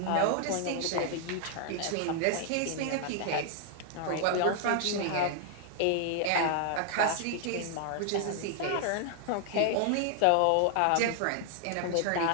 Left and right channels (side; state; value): both; different; correlation 0.00